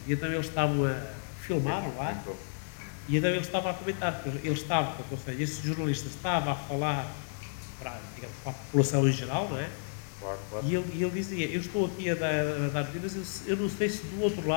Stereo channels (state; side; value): silent; right; digital silence